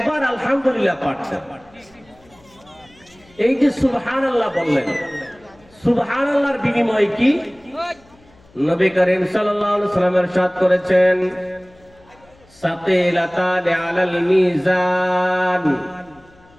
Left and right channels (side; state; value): left; noise; hum, 29 dB below the sound